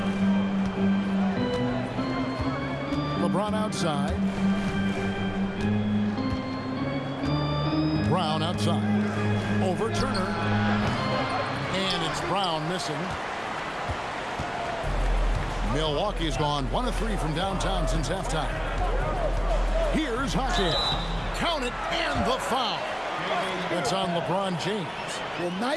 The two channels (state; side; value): identical; both; correlation 1.00